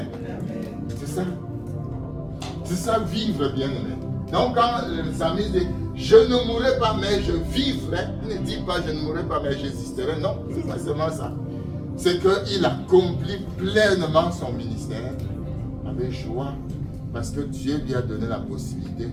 C'est ça. C'est ça, vivre bien aimé. Donc quand le psalmiste dit, je ne mourrai pas mais je vivrai, il ne dit pas je ne mourrai pas mais j'existerai. Non, c'est pas seulement ça. C'est qu'il accomplit pleinement son ministère avec joie parce que Dieu lui a donné la possibilité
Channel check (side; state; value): both; identical; correlation 1.00